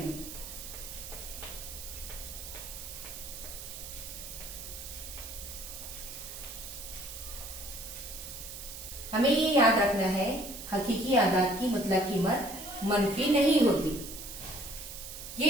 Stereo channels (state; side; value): noise; right; hiss, 10 dB below the sound